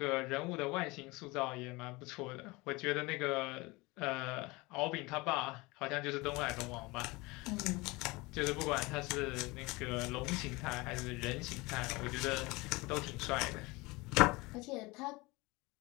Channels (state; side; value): quieter; right; 23.6 dB